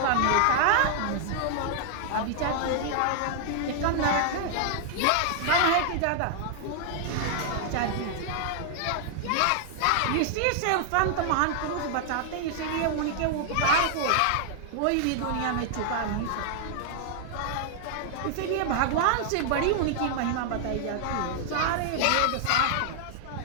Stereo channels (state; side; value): different; both; correlation -0.01